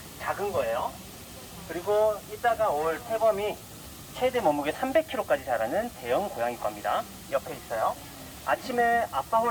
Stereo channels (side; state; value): both; identical; correlation 1.00